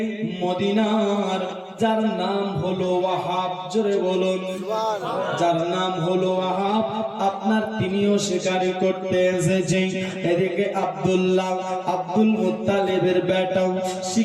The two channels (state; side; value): identical; both; correlation 1.00